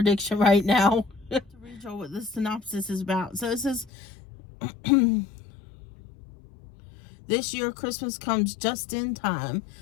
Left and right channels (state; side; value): drops out; right; at 3.9 s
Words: right now. To read you what the synopsis is about. So it says, this year, Christmas comes just in time.